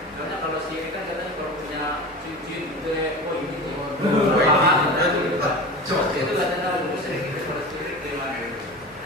Karena kalau syirik kan katanya kalau punya cincin gitu ya, oh ini itu katanya musyrik itu kalau syirik gimana?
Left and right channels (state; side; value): normal; both; correlation 0.31